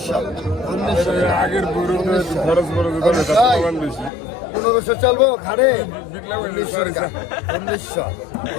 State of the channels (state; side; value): drops out; right; at 4.1 s